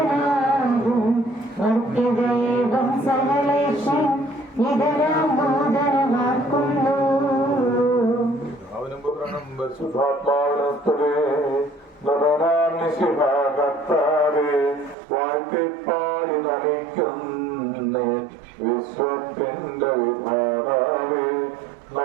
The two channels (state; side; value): drops out; left; at 15.0 s